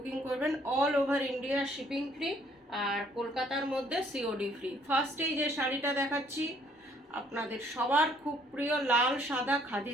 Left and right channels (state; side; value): normal; both; correlation 0.64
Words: করবেন। All over India shipping free, আর কলকাতার মধ্যে সিওডি ফ্রি। ফার্স্টেই যে শাড়িটা দেখাচ্ছি আপনাদের সবার খুব প্রিয় লাল সাদা khadi